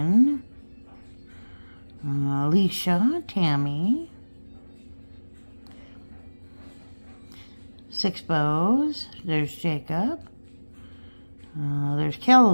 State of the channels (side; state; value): both; inverted; correlation -1.00